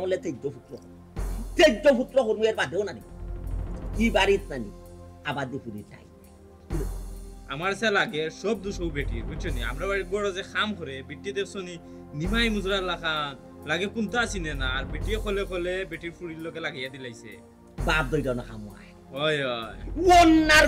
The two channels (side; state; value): both; identical; correlation 1.00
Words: বললে তেজ্য পুত্র করবো এর বাদেও নানি কি বাড়িত নানি আবাদি ফুরি চাই আমার সে লাগে সব দুশো বেটি বুঝছো নি আমরা বাড়ির বড় যে খাম করে বেটি দেখছনি নিমাই মুজরা লাখান লাগে কোনটা চিনে না আর বেটি খলে বেটির ফুরির লোকে লাগিয়ে দিলাইছে বাপ দইটা না খামুয়ায় ওই ওই ওন্নার